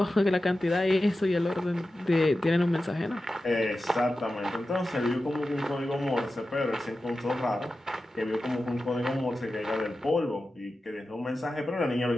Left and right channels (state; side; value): normal; both; correlation 0.93